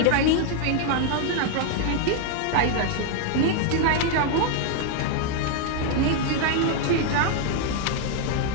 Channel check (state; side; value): different; both; correlation 0.00